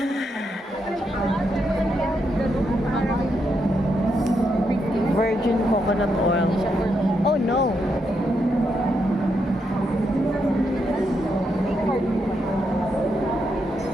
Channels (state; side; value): normal; both; correlation 0.81